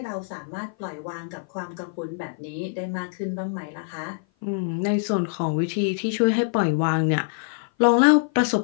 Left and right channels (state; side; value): silent; right; 55 dB below the other